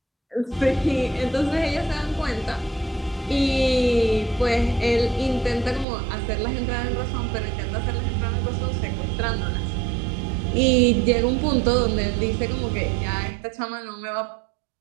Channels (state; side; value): drops out; left; at 5.9 s